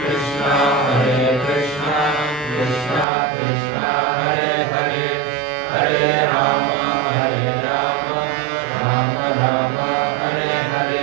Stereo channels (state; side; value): drops out; left; at 3.1 s